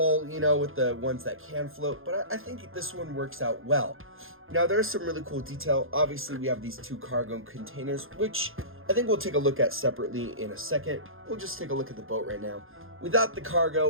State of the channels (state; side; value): late; left; 0.60 ms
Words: you know, with the ones that can float, but I think this one works out well. Now, there's some really cool detail. Obviously, we have these 2 cargo containers, which I think we'll take a look at separately in a second. We'll just take a look at the boat right now. Without the